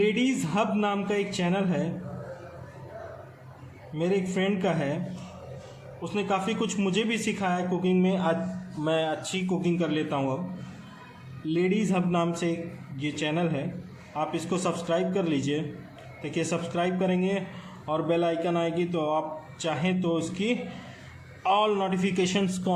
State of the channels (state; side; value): identical; both; correlation 1.00